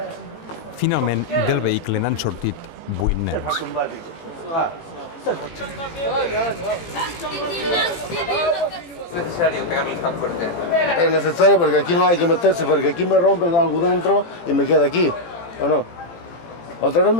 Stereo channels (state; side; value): late; right; 17 ms